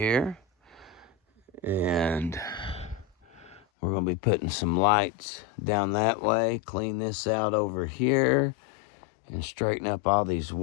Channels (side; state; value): right; drops out; at 3.6 s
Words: And we're going to be putting some lights down that way. Clean this out over here. And straighten up all these